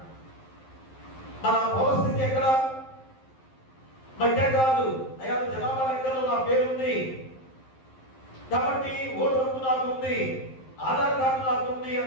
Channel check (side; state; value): right; late; 11 ms